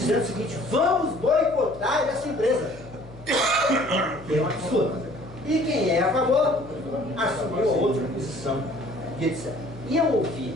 o seguinte: vamos boicotar essa empresa. Que é um absurdo. E quem é a favor assumiu a outra posição. E etc. E eu ouvi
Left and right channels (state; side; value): noise; left; hum, 19 dB below the sound